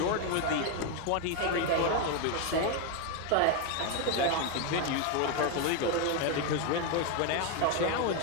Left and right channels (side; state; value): both; different; correlation 0.01